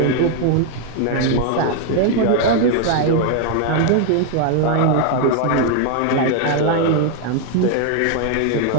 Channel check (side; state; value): both; different; correlation 0.00